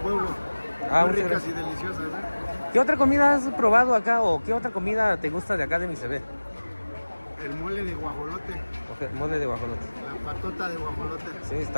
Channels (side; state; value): both; inverted; correlation -1.00